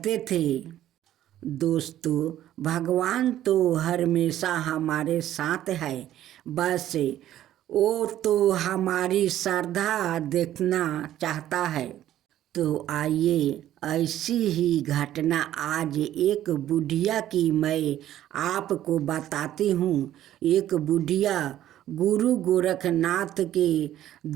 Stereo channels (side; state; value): left; quieter; 12.5 dB